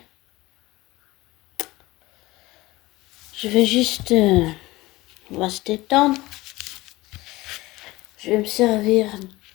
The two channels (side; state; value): right; quieter; 19.7 dB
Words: Je vais juste, on va se détendre. Je vais me servir